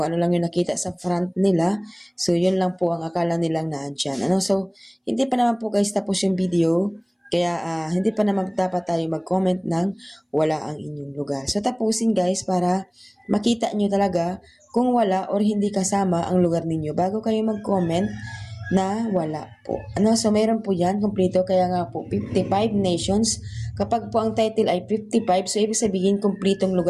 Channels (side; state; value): both; identical; correlation 1.00